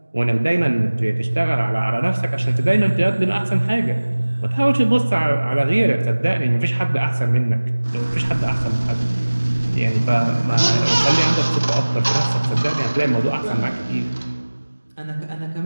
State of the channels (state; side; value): inverted; both; correlation -1.00